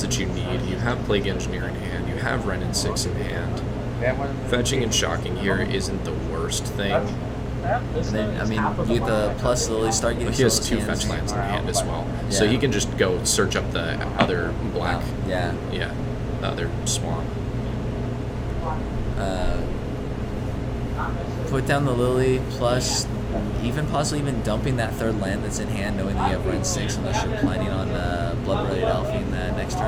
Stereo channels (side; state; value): both; identical; correlation 1.00